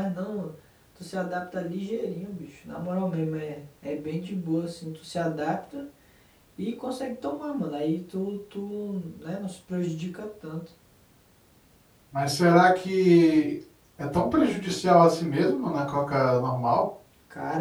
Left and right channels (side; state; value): both; identical; correlation 1.00